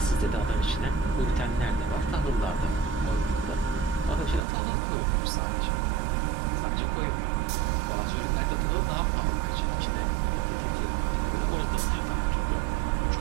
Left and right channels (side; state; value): left; drops out; at 4.5 s